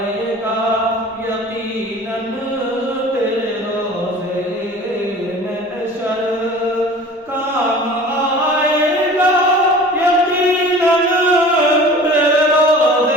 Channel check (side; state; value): both; normal; correlation 0.42